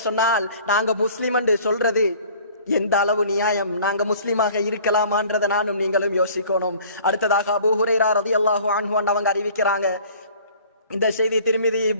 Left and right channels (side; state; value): both; inverted; correlation -0.50